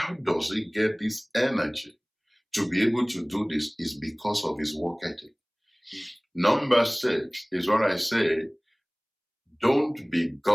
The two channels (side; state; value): both; identical; correlation 1.00